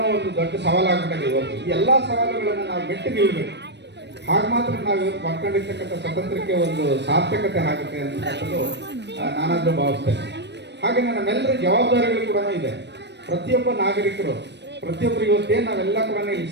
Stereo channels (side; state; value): left; late; 0.50 ms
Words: ಒಂದು ದೊಡ್ಡ ಸವಾಲಾಗ್ಬಿಟ್ಟಿದೆ. ಇವತ್ತು ಈ ಎಲ್ಲ ಸವಾಲುಗಳನ್ನು ನಾವು ಮೆಟ್ಟಿ ನಿಲ್ಲಬೇಕು. ಹಾಗೆ ಮಾತ್ರ ನಾವು ಇವತ್ತು ಮಾಡ್ಕೊಂಡಿರ್ತಕ್ಕಂಥ ಸ್ವತಂತ್ರಕ್ಕೆ ಒಂದು ಸಾರ್ಥಕತೆ ಆಗುತ್ತೆ ಅಂತಕ್ಕಂಥದ್ದು ನಾನಾದರೂ ಭಾವಿಸ್ತೇನೆ. ಹಾಗೆ ನಮ್ಮೆಲ್ಲರ ಜವಾಬ್ದಾರಿಗಳು ಕೂಡ ಇದೆ. ಪ್ರತಿಯೊಬ್ಬ ನಾಗರಿಕರು, ಪ್ರತಿಯೊಬ್ಬರು ಇವತ್ತೇನು ನಾವೆಲ್ಲ ಕೂಡ ಇಲ್ಲಿ